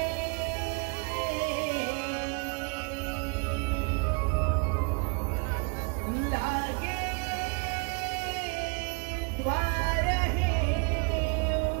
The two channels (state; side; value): quieter; left; 33.8 dB